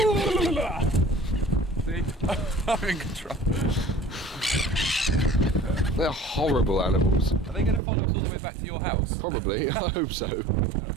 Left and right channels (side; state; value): left; drops out; at 7.8 s